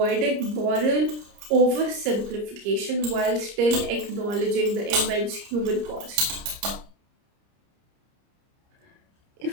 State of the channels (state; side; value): late; left; 30 ms